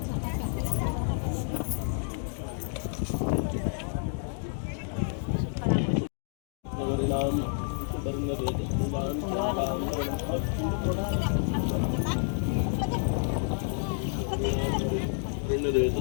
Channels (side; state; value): right; silent; 58 dB below the other